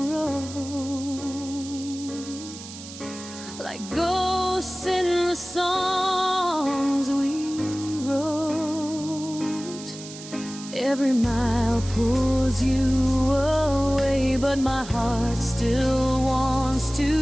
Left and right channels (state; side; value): noise; right; hiss, 14 dB below the sound